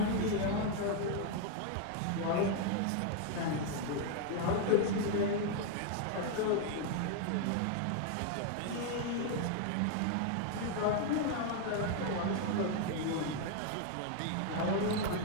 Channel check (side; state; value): both; different; correlation 0.00